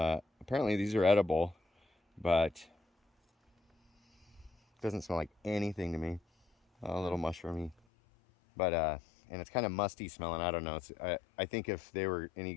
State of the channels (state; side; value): drops out; right; at 7.8 s